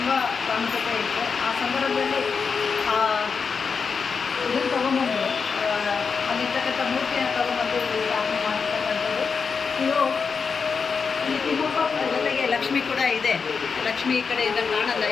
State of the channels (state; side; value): quieter; right; 5.5 dB